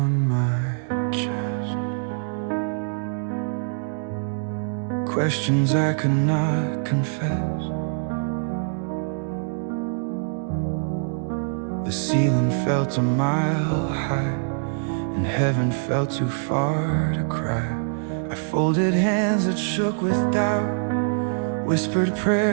my chest, questions I could not confess. The ceiling felt a mile high, and heaven felt too far to cry. I folded hands that shook with doubt, whispered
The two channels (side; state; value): left; silent; digital silence